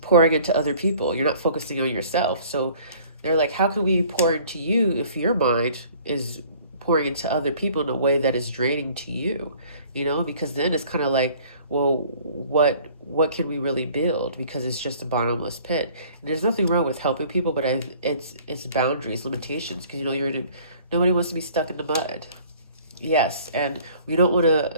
pouring into other people. You're not focusing on yourself. So they're like, how can we pour into you if your mind is pouring into other people in a way that is draining to you? Because then it's kind of like, well, what can we really build? Because it's just a bottomless pit. And there's nothing wrong with helping people, but it's boundaries, limitations, because nobody wants to be stuck in the mud. Yes, and we don't want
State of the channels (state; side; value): inverted; both; correlation -0.53